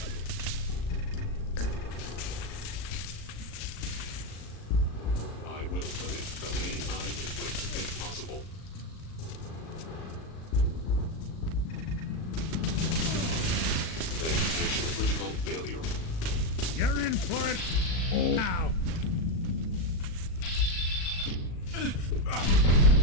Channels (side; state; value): right; late; 37 ms